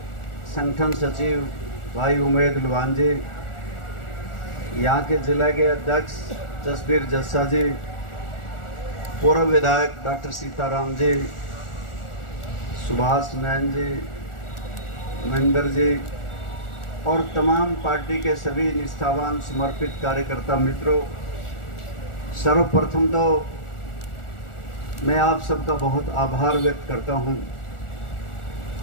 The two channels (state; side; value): late; right; 1.4 ms